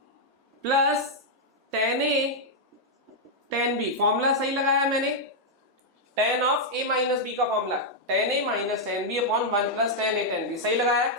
plus ten A ten B, formula सही लगाया मैंने, ten of A minus B का formula ten A minus ten B upon one plus ten A ten B, सही लगाया,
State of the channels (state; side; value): normal; both; correlation -0.04